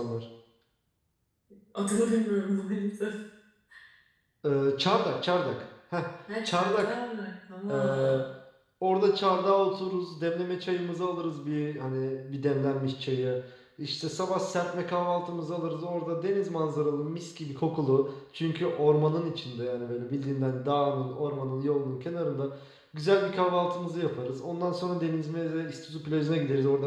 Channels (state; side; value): identical; both; correlation 1.00